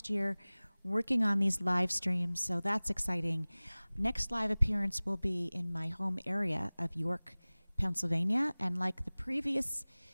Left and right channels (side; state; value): both; inverted; correlation -1.00